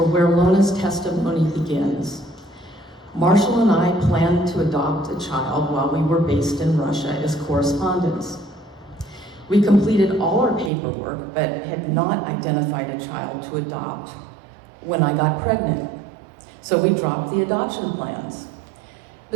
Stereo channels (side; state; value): left; drops out; at 10.7 s